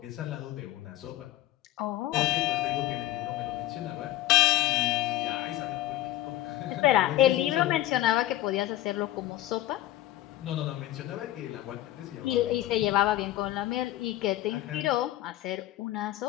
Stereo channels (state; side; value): quieter; right; 14.8 dB